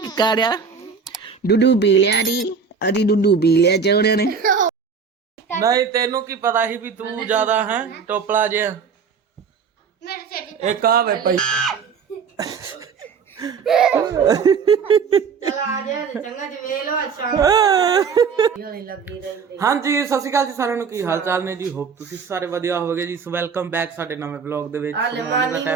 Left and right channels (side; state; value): left; quieter; 5.9 dB